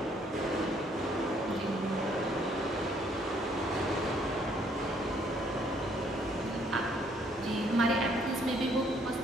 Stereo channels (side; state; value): both; normal; correlation 0.66